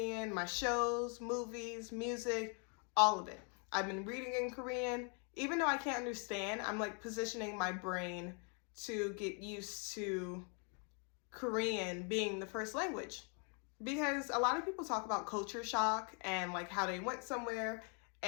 my shows, movies, music, all of it. I've been reading in Korean. Even though I can't understand, I'm like positioning my brain to get used to Korean being the first language. Because a lot of people talk about culture shock and like how they went somewhere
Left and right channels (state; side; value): quieter; right; 38.7 dB